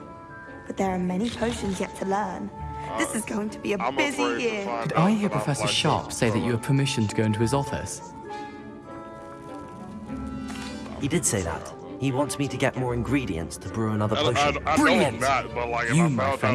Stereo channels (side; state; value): both; identical; correlation 1.00